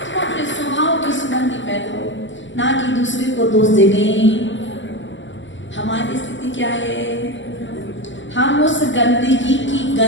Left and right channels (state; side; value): late; right; 0.54 ms